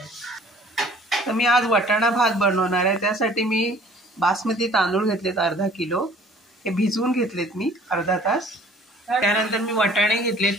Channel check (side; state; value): both; normal; correlation 0.53